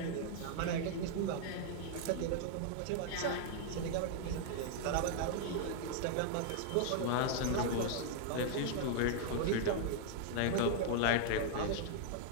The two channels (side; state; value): both; different; correlation -0.01